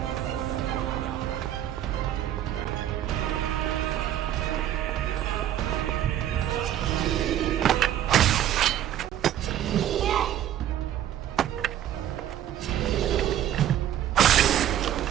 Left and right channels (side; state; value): left; quieter; 11.3 dB